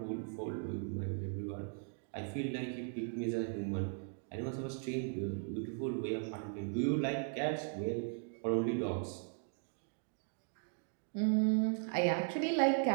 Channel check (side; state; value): left; silent; 52 dB below the other